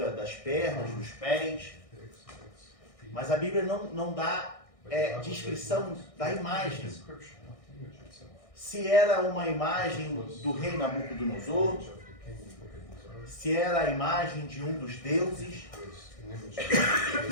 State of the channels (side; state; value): right; late; 1.6 ms